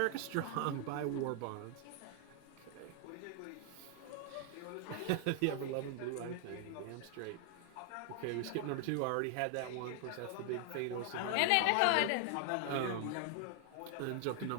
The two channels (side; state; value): both; different; correlation 0.00